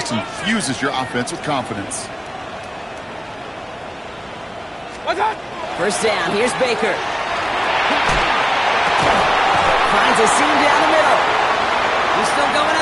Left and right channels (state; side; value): identical; both; correlation 1.00